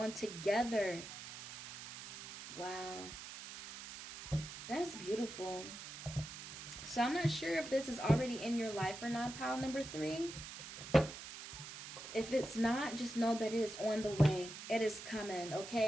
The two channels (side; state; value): right; noise; hiss, 11 dB below the sound